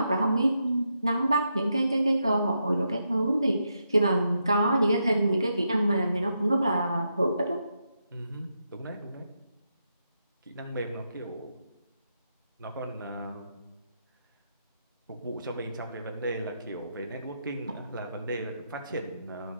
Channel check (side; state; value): both; inverted; correlation -0.83